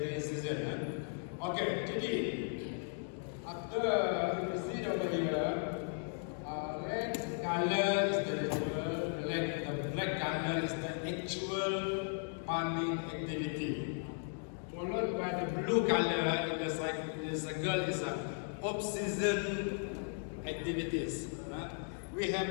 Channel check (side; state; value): right; silent; 53 dB below the other